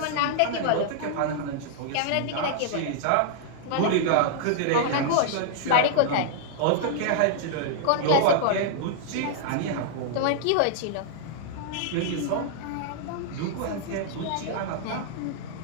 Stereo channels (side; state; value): both; different; correlation -0.01